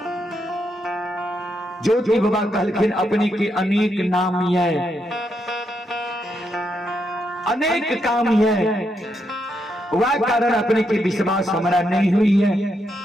ज्योति बाबा कहलखिन अपने के अनेक नाम है, अनेक काम है, वह कारण अपने के विश्वास हमारा नहीं हुई है।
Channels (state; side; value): normal; both; correlation 0.80